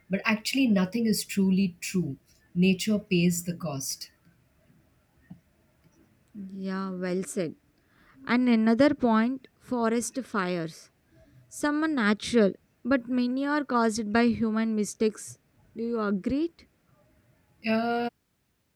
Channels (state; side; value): identical; both; correlation 1.00